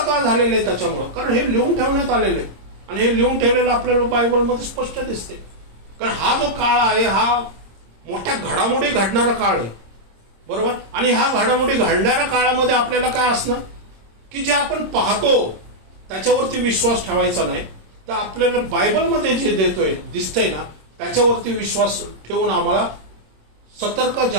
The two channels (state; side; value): late; left; 26 ms